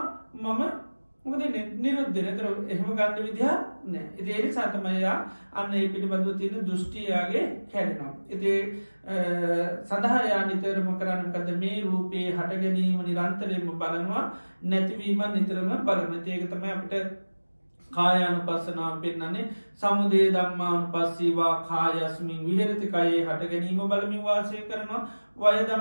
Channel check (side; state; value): both; inverted; correlation -1.00